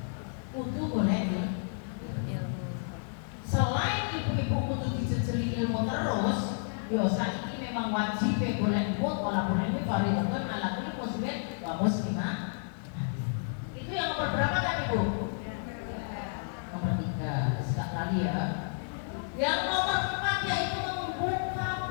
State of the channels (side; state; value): right; silent; digital silence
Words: kudu boleh ilmu. selain ibu-ibu kudu dijejeli ilmu terus biasa ini memang wajib boleh ilmu walaupun ilmu fardhu ala kulli muslimin wa muslimah. Itu yang nomor berapa tadi Bu? Nomor 3 sekali ya. Yang nomor 4 yaitu membuka